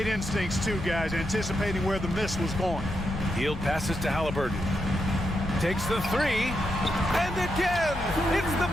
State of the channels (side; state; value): left; noise; hum, 11 dB below the sound